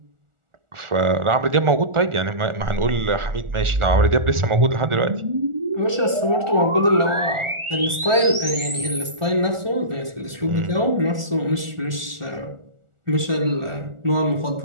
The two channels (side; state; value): left; late; 1.4 ms